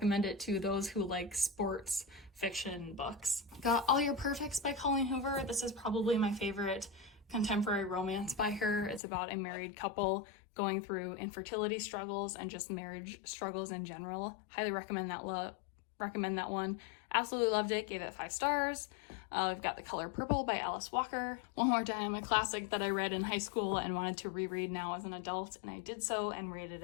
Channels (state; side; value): drops out; right; at 9.0 s